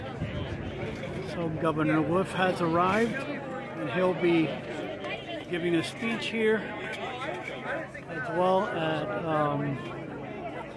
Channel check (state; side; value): identical; both; correlation 1.00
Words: Governor Wolf has arrived, and he'll be giving a speech here, as well as